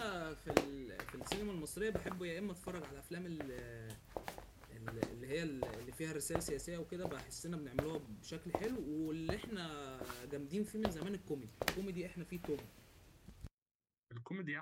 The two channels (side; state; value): both; identical; correlation 1.00